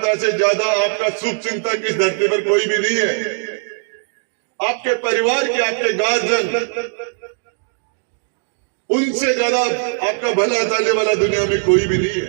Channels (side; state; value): left; silent; digital silence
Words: से ज्यादा आपका शुभ चिंतक इस धरती पर कोई भी नहीं है। आपके परिवार के, आपके गार्जियन, उनसे ज्यादा आपका भला चाहने वाला दुनिया में कोई भी नहीं